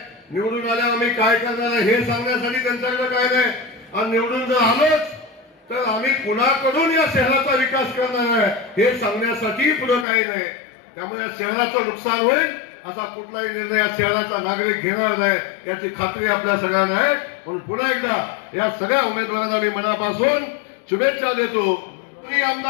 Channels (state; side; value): drops out; right; at 10.1 s